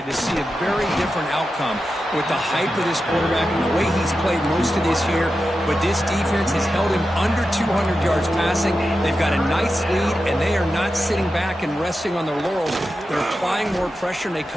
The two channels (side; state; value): both; normal; correlation 0.91